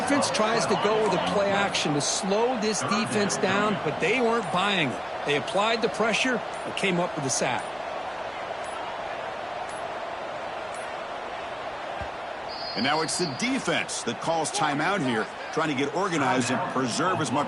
tries to go with a play action to slow this defense down, but they weren't buying it. They applied the pressure and came up with the sack. And now it's the defense that calls timeout here, trying to get organized and preserve as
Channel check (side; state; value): both; identical; correlation 1.00